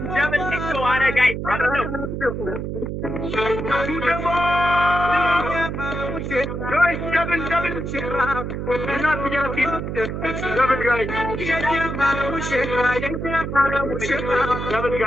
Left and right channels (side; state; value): right; noise; hum, 4 dB below the sound